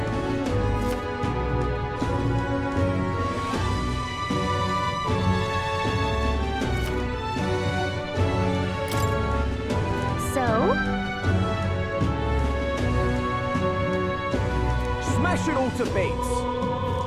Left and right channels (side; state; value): both; identical; correlation 1.00